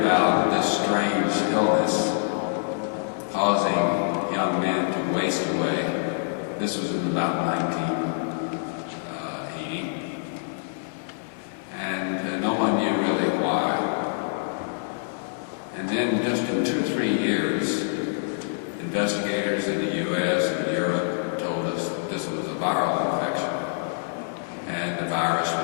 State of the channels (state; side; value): silent; right; 61 dB below the other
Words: this strange illness causing young men to waste away. This was in about 1980, and no one knew really why. And then just in 2 or 3 years, investigators in the U.S. and Europe told us that this was a viral infection, and the virus